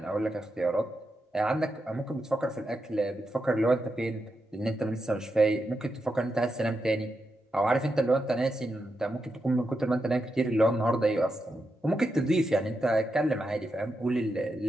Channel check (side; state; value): both; normal; correlation 0.86